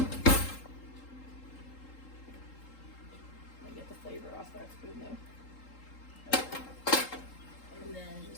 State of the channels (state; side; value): late; right; 3.8 ms